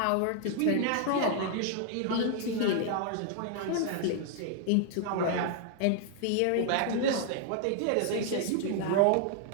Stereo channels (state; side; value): different; both; correlation 0.00